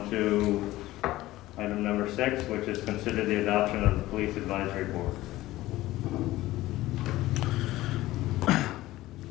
to item number 6, which is consider the adoption of the Police Advisory Board.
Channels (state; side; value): quieter; right; 16.8 dB